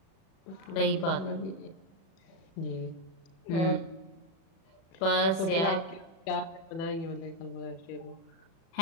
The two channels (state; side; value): late; right; 36 ms